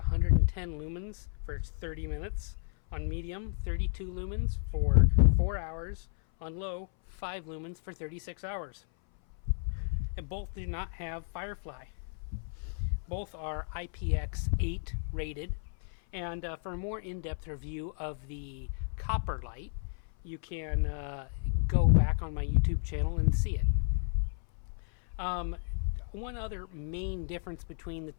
lumens for 30 minutes. On medium, 32 lumens for 4 hours. On low, 5 lumens for 36 hours. And both do not have Firefly. Both are IPX8 rated. And for a more in-depth review of the copper light, you can go back on my YouTube channel and see it. One other main difference between the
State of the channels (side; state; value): right; silent; 56 dB below the other